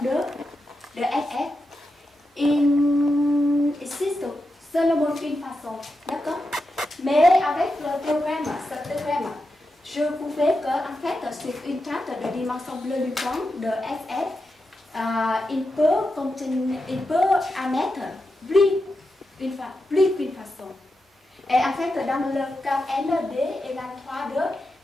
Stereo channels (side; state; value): both; normal; correlation 0.88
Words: 2 de FF, il existe seulement une façon. D'accord? Mais avec le théorème, ce théorème, je pouvais que, en fait, sur une table de dimension bleue luisant de FF, il peut émettre plus qu'une façon. Et en fait, dans le cas ND et la 3D,